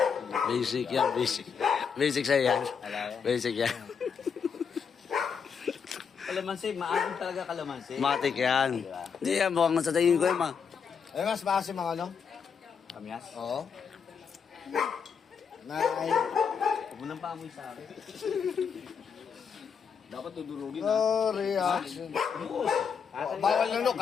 Basic yan, basic. Basic sa'yo yan. Basic yan. Kalamansi, maasim talaga kalamansi. Matik yan. Hindi yan, mukhang sa tingin ko yan, ma. Ay, mas base mga ano? Kamyas? Oo. Nay. Huwag mo nang paamoy sa akin. Dapat tudurugin ha. No reaction. Bawal lunok,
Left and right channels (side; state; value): right; quieter; 6.5 dB